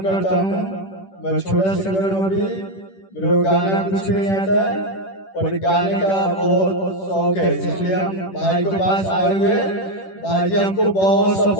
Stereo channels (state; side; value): late; right; 10 ms